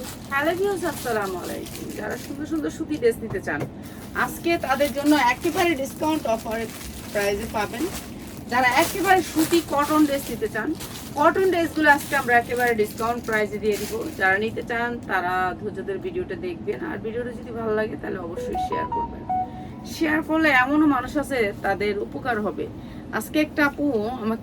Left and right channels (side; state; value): both; identical; correlation 1.00